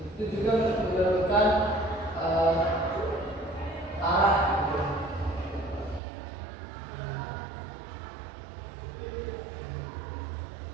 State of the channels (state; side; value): drops out; left; at 6.0 s